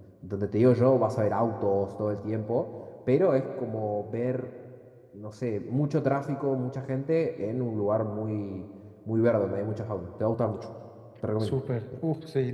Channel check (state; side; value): identical; both; correlation 1.00